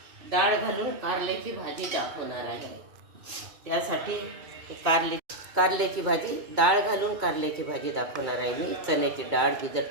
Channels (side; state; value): left; late; 2.2 ms